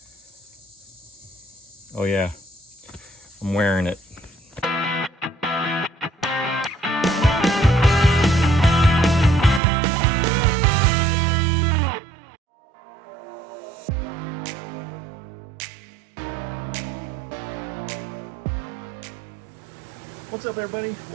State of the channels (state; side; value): drops out; left; at 9.6 s